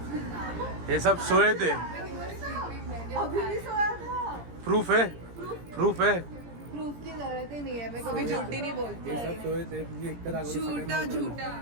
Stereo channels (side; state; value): left; late; 17 ms